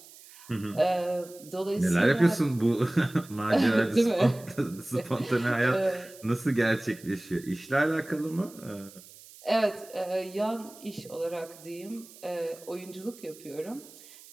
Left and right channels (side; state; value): right; noise; hiss, 21 dB below the sound